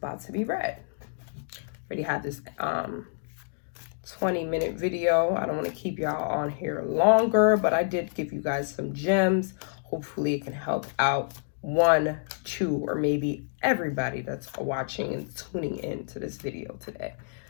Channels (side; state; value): right; silent; digital silence